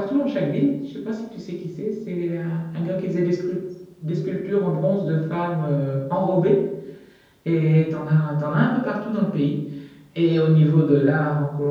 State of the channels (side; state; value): both; identical; correlation 1.00